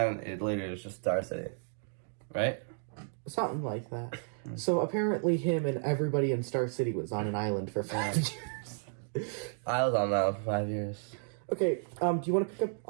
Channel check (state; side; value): silent; left; digital silence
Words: it later is just Star City, right? Something like that. So apparently, him and everybody in Star City was on an island for 5 years. I was on that for 5 years. Okay, do you want to pick up